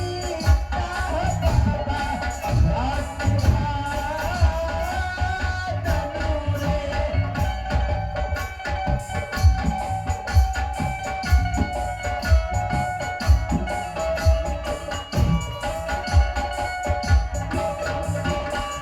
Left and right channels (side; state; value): both; identical; correlation 1.00